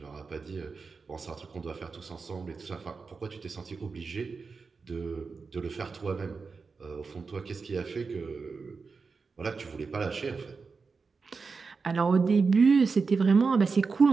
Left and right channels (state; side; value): quieter; left; 4.7 dB